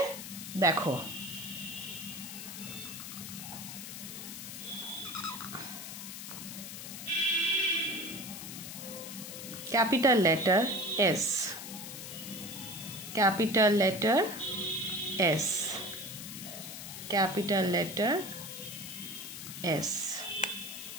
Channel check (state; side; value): noise; left; hiss, 9 dB below the sound